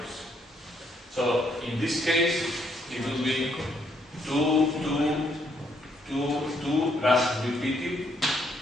So in this case, it will be 2, 2, 2, 2 plus repeated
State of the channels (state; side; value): normal; both; correlation 0.72